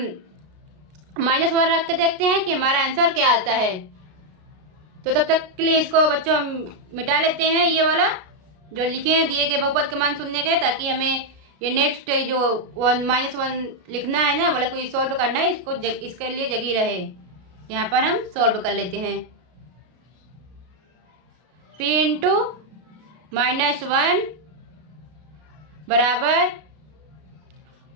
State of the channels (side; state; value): left; late; 33 ms